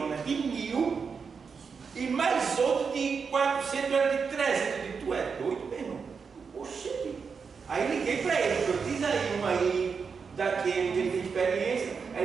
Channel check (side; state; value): left; quieter; 5.6 dB